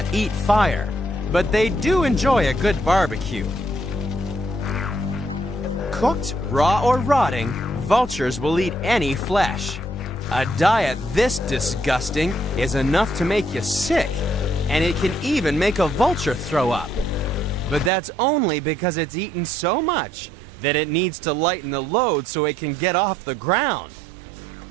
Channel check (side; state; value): left; drops out; at 17.9 s